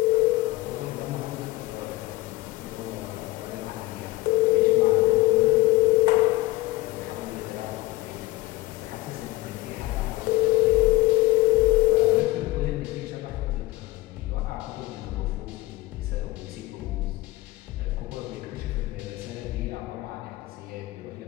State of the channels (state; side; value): quieter; right; 19.7 dB